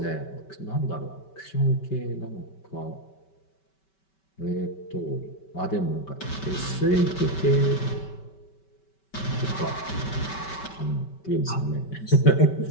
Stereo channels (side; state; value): right; late; 5.2 ms